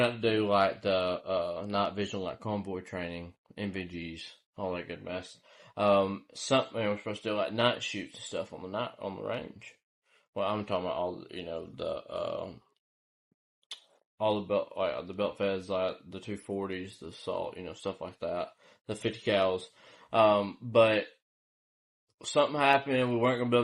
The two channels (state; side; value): identical; both; correlation 1.00